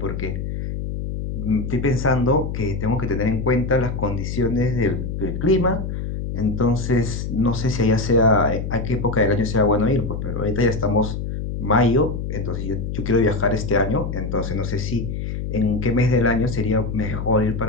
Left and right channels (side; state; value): left; noise; hum, 4 dB below the sound